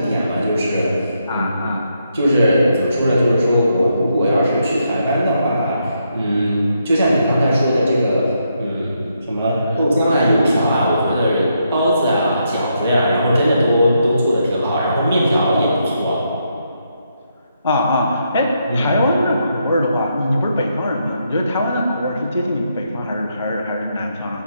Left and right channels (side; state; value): both; inverted; correlation -0.79